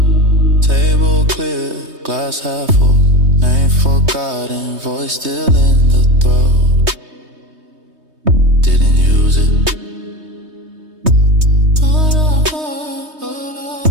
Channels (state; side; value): late; left; 3.2 ms